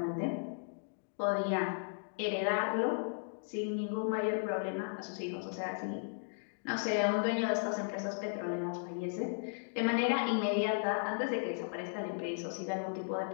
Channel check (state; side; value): silent; right; digital silence